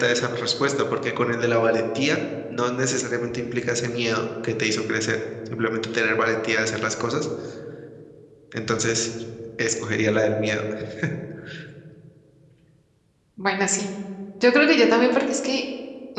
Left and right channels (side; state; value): both; identical; correlation 1.00